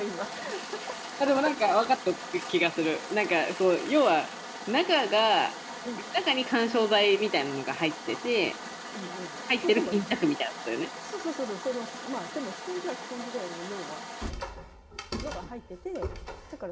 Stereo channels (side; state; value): both; identical; correlation 1.00